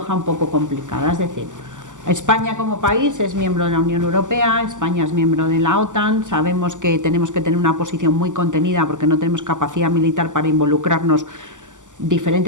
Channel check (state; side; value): late; left; 0.87 ms